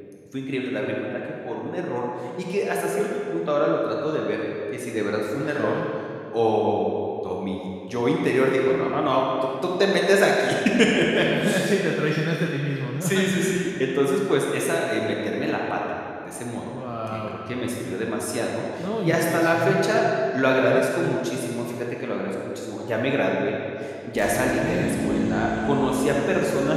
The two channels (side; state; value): both; identical; correlation 1.00